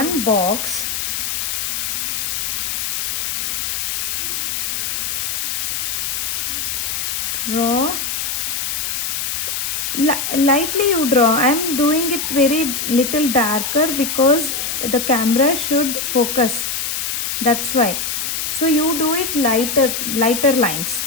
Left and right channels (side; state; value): left; noise; hiss, 1 dB below the sound